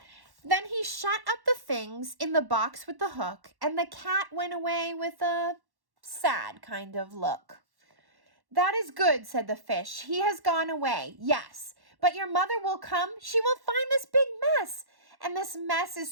Then he shut up the things in the box with the hook, and the cat went away with a sad kind of look. "That is good," said the fish. "He has gone away, yes. But your mother will come. She will find this big mess. And this mess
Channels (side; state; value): left; late; 1.1 ms